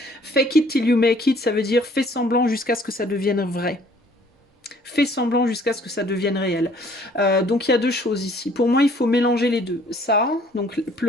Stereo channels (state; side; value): normal; both; correlation 0.58